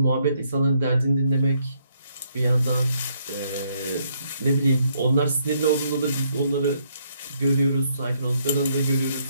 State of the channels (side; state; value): both; inverted; correlation -0.72